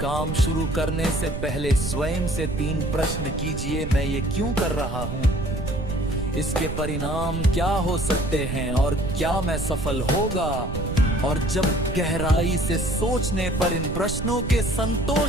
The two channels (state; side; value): noise; right; rumble, 5 dB below the sound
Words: शुरू करने से पहले स्वयं से 3 प्रश्न कीजिए। मैं ये क्यों कर रहा हूँ, इसके परिणाम क्या हो सकते हैं और क्या मैं सफल होगा। और जब गहराई से सोचने पर इन प्रश्नों के